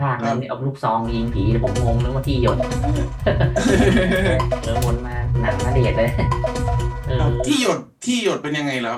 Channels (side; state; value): both; identical; correlation 1.00